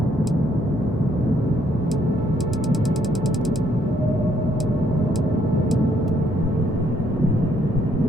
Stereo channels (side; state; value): both; normal; correlation 0.69